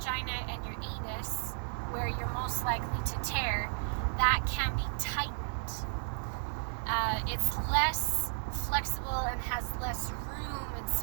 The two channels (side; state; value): left; silent; digital silence